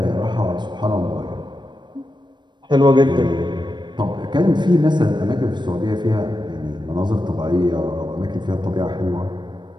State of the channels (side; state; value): left; late; 0.22 ms